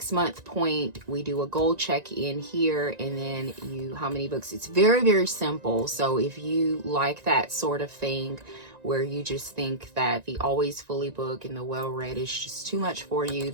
point, we do a goal check-in here, and then how many books. It's very, very simple. So if you like that sort of thing, where you just think that the always fully book and the well-read is just too much for you,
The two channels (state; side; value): late; left; 1.9 ms